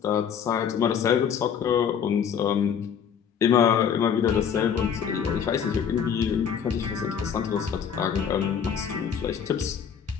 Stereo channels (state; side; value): quieter; right; 7.7 dB